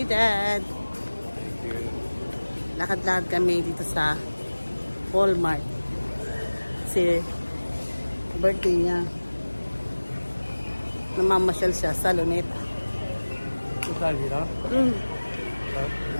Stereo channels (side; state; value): both; inverted; correlation -1.00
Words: Dad. Thank you. Lakad-lakad kami dito sa Walmart. Kasi birthday niya. Namamasyal siya sa Luneta. Ito tayo dito?